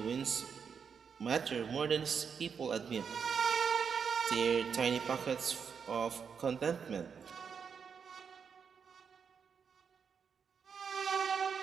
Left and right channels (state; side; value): quieter; left; 6.5 dB